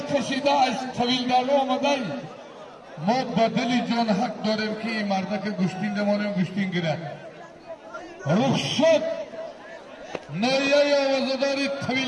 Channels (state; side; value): identical; both; correlation 1.00